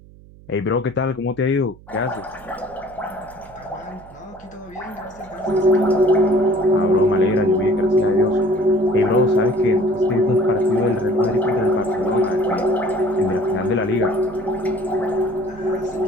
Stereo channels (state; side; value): noise; right; hum, 23 dB below the sound